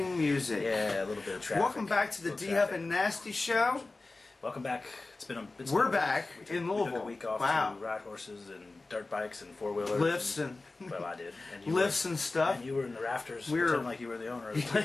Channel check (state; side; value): quieter; right; 3.3 dB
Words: music. Yeah, a little bit of traffic. Welcome back to the D-Huff and Nasty Show. Welcome back. We're back in Louisville. We took a week off to ride horses and dirt bikes and four-wheelers. Lifts and well, I did. And lifts and stuff. And you were in the rafters pretending like you were the owner of the